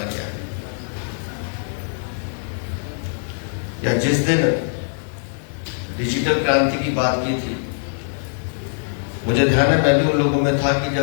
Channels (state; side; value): silent; right; 57 dB below the other